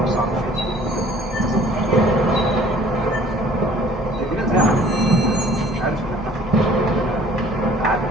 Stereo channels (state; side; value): normal; both; correlation 0.53